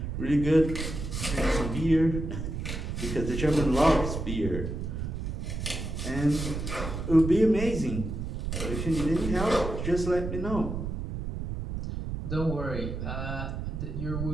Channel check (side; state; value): right; noise; rumble, 4 dB below the sound